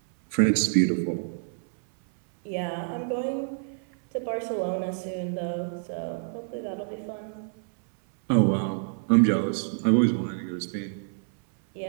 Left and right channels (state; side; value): silent; left; 59 dB below the other